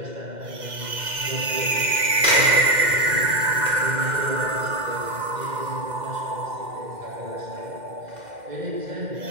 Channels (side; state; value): left; late; 2.1 ms